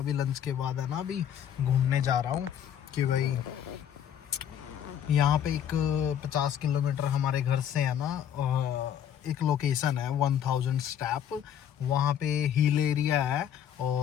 लंच के बाद है ना, अभी घूमने जा रहा हूँ कि भाई यहाँ पे एक 50 किलोमीटर हमारे घर से है ना, एक लोकेशन है 1000 स्टेप। वहाँ पे हिल एरिया है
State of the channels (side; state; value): right; quieter; 9.5 dB